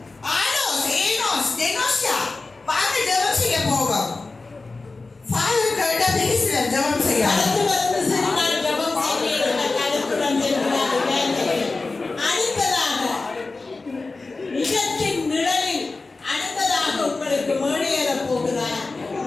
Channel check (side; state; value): right; quieter; 3.7 dB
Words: ஆனோஸ் ஏனோஸ் டெனோஸ்யா வாங்க ஜெபம் செய்ய போவோம். ஃபாதர் கிட்ட பேசுற ஜெபம் செய்ய அடுத்து வந்து சரி நான் ஜெபம் செய்கிறேன் கருத்துடன் செல்கிறார்கள். அடுத்ததாக நிஜத்தின் நிழலில் அடுத்ததாக உங்களுக்கு மேடையேற போகிறார்